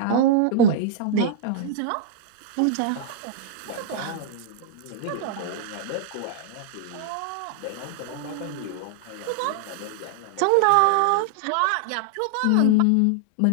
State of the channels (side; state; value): both; different; correlation -0.01